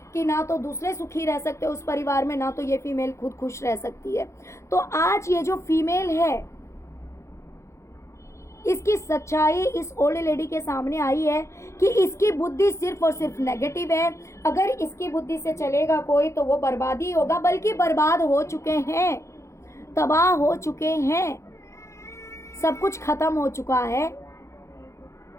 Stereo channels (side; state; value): right; late; 0.14 ms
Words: कि ना तो दूसरे सुखी रह सकते उस परिवार में, ना तो ये फीमेल खुद खुश रह सकती है। तो आज ये जो फीमेल है, इसकी सच्चाई इस ओल्ड लेडी के सामने आई है कि इसकी बुद्धि सिर्फ और सिर्फ नेगेटिव है। अगर इसकी बुद्धि से चलेगा कोई तो वो बर्बादी होगा, बल्कि बर्बाद हो चुके हैं, तबाह हो चुके हैं, सब कुछ खत्म हो चुका है।